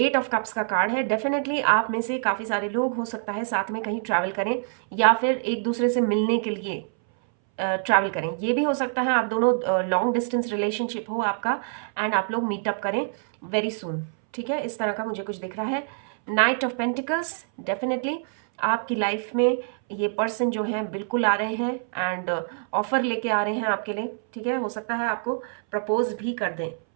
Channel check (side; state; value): left; silent; 60 dB below the other